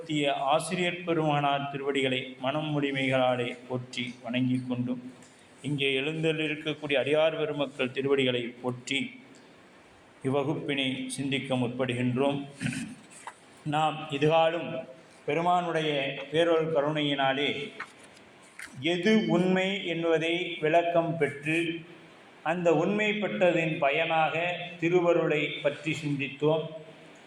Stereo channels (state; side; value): identical; both; correlation 1.00